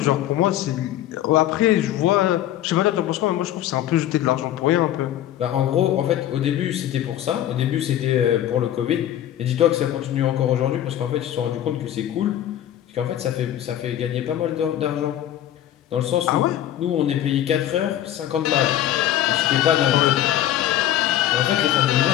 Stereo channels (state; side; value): quieter; right; 12.2 dB